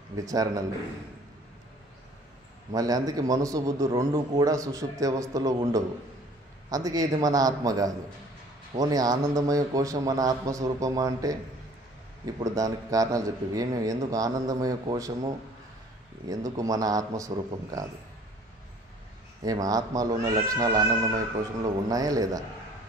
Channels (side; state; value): both; normal; correlation 0.53